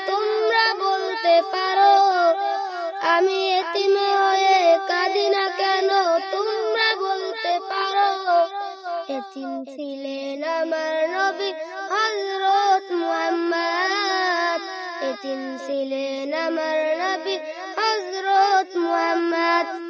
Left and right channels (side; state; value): both; identical; correlation 1.00